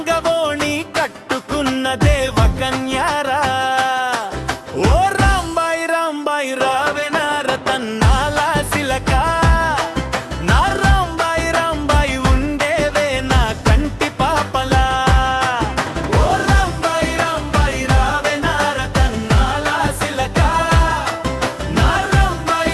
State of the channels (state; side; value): identical; both; correlation 1.00